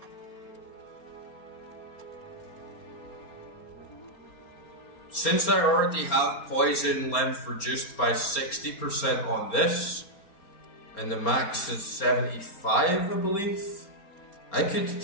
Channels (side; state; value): right; late; 4.3 ms